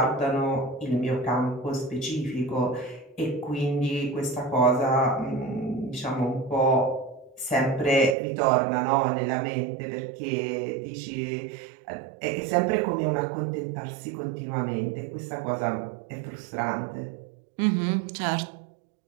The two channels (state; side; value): drops out; left; at 8.2 s